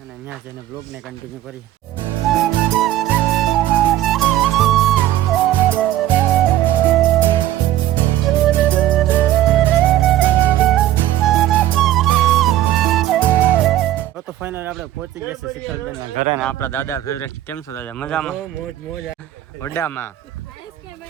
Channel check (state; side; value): quieter; left; 13.6 dB